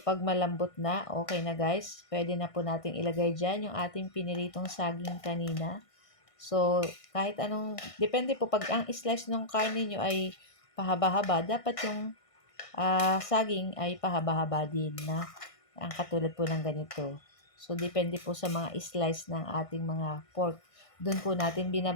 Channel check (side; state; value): right; late; 1.6 ms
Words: malambot na, okay na guys. Pwede na po natin ilagay dyan yung ating piniritong saging kanina. So, kahit anong, depende po, pag ang slice ng karne nyo ay pahaba-haba, dapat yung saging ay pahaba-haba din na ang katulad po ng ganito. So, depende po sa mga slice ng ating mga pork. Doon po natin